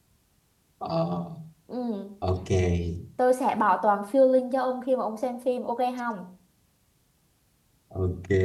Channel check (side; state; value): both; identical; correlation 1.00